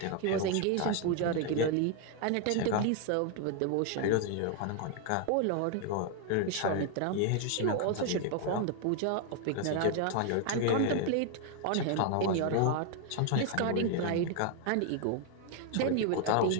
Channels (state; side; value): different; both; correlation 0.00